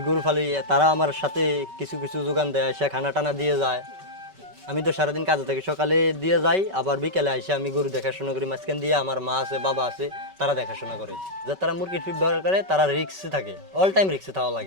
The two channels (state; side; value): late; left; 5.3 ms